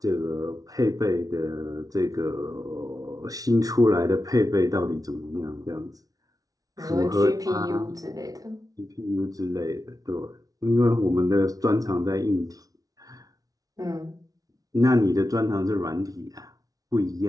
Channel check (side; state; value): left; late; 0.18 ms